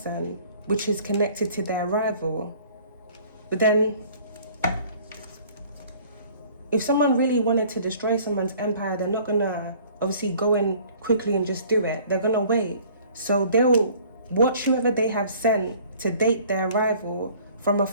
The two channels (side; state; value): both; inverted; correlation -0.53